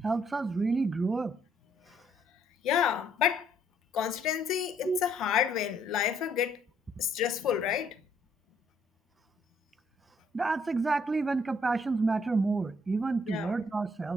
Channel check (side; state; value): both; normal; correlation 0.67